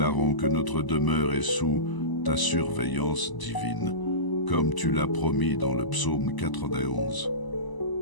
que notre demeure est sous ta surveillance divine, comme tu l'as promis dans le psaume 91.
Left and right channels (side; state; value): right; late; 1.0 ms